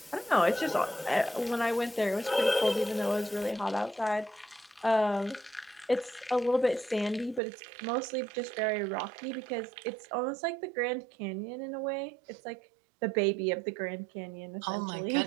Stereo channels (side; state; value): left; drops out; at 7.4 s